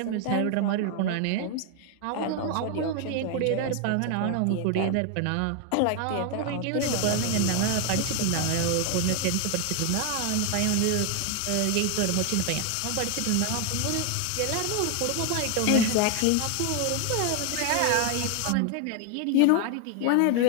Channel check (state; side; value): different; both; correlation 0.00